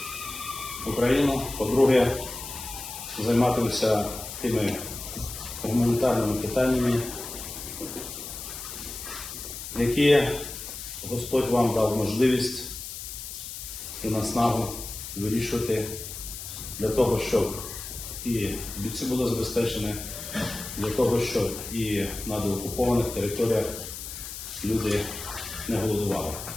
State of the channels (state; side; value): noise; left; hiss, 9 dB below the sound